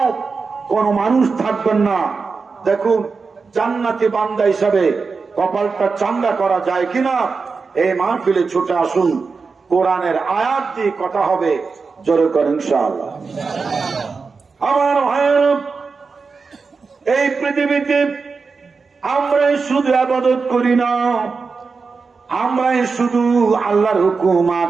কোন মানুষ থাকবেন না। দেখুন, জান্নাতি বান্দা হিসাবে কপালটা চাঙ্গা করা যায় কিনা এই মাহফিলে ছুটে আসুন। কোরআনের আয়াত দিয়ে কথা হবে, জোরে করেন ইনশাআল্লাহ। আমার ভাইয়েরা, এই পৃথিবীতে আমরাই শুধু ইবাদত করি না, আমরাই শুধু আল্লাহর হুকুম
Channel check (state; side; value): quieter; left; 4.7 dB